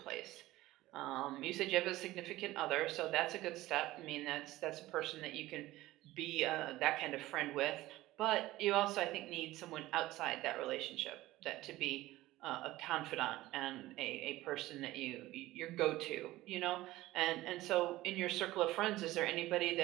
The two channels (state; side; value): quieter; left; 17.1 dB